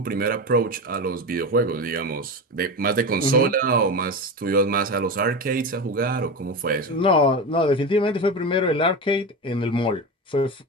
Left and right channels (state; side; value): normal; both; correlation 0.22